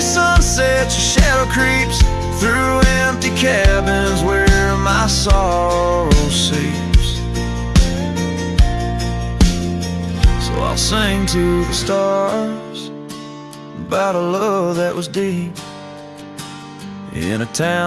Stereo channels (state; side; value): identical; both; correlation 1.00